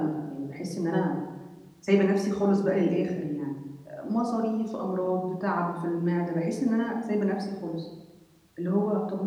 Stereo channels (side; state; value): both; identical; correlation 1.00